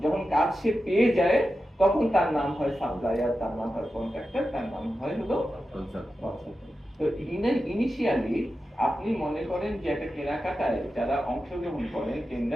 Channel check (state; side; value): normal; both; correlation 0.91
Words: যখন কাজ সে পেয়ে যায় তখন তার নাম হয় সাপ্লায়ার, তার নাম হয় কন্ট্রাক্টর, তার নাম হয় হলো কনসালটেন্ট। তো ইনিশিয়ালি আপনি মনে করেন যে একটা কেনাকাটায় যারা অংশগ্রহণ করেন